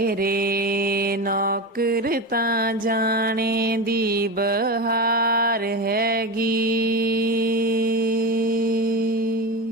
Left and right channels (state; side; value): normal; both; correlation 0.22